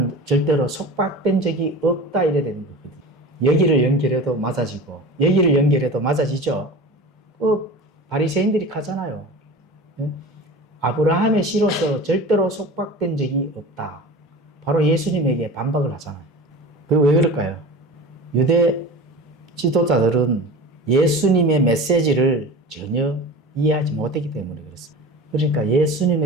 절대로 속박된 적이 없다, 이래 되는 거거든요. 여기를 연결해도 맞아지고 여기를 연결해도 맞아지죠. 바리새인들이 하잖아요. 예? 아브라함의 씨로서 절대로 속박된 적이 없다. 바로 예수님에게 반박을 하잖아요. 그리고 왜 그럴까요? 유대 지도자들은 예수님의 메시지를 전혀 이해하지 못했기 때문에 그렇습니다. 그러니까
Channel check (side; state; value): both; normal; correlation 0.34